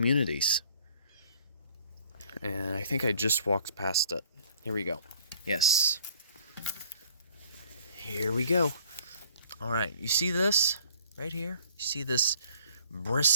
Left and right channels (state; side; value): inverted; both; correlation -0.55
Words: And I think I just walked past it. Here we go. Yes. Here we go. Alright, you see this right here? You see this